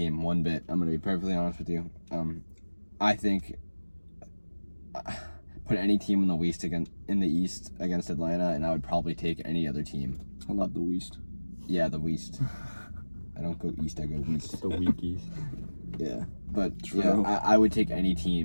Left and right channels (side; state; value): both; inverted; correlation -1.00